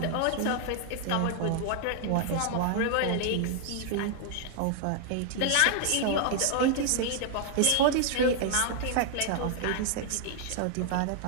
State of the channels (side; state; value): both; different; correlation 0.00